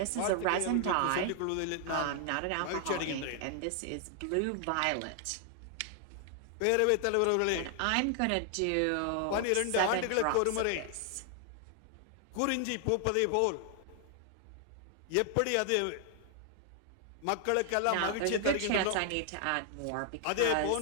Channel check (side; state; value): both; different; correlation 0.00